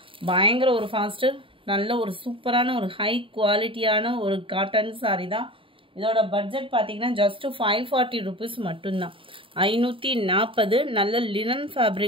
பயங்கர ஒரு ஃபாஸ்ட்டு நல்ல ஒரு சூப்பரான ஒரு ஹை குவாலிட்டியான ஒரு காட்டன் சாரி தான். இதோட பட்ஜெட் பார்த்தீங்கன்னா ஜஸ்ட் 540 ருபீஸ் மட்டும்தான். 540 நல்ல லினன்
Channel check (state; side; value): late; left; 0.25 ms